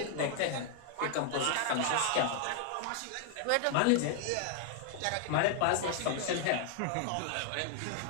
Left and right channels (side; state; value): both; different; correlation 0.00